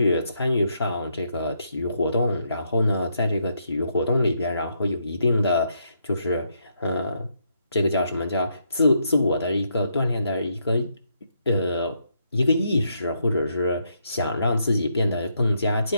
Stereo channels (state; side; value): inverted; both; correlation -0.77